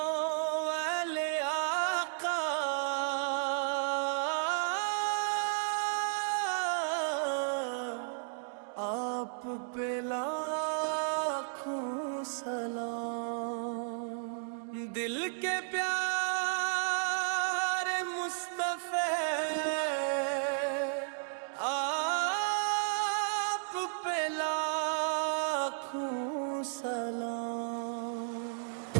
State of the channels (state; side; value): silent; left; digital silence